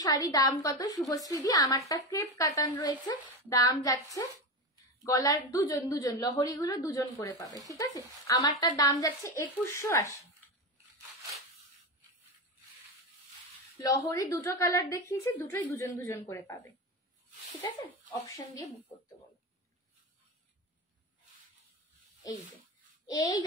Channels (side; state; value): both; normal; correlation 0.19